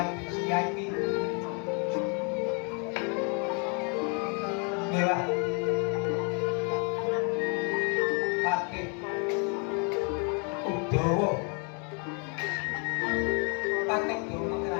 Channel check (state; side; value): quieter; right; 36.5 dB